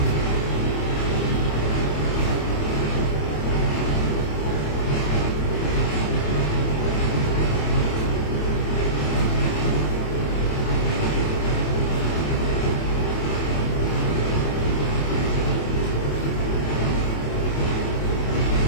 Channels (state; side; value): late; right; 27 ms